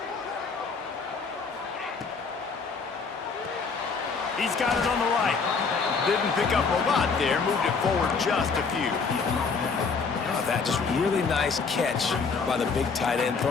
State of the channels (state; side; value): quieter; right; 5.0 dB